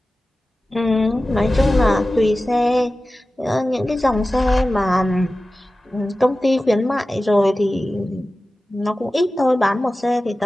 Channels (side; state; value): both; normal; correlation 0.95